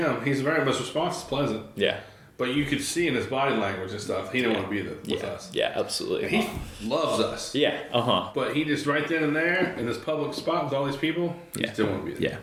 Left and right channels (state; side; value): identical; both; correlation 1.00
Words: he's very much response is pleasant. Yeah. But you could see in his body language and stuff, he didn't want to be with us. Yeah, absolutely. And he loves us. Yeah, But he just right then and there in this public spot with all these people, he just didn't want to be there. Yeah.